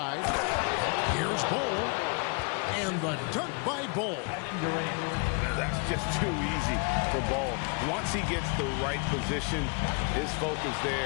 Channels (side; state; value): right; quieter; 34.8 dB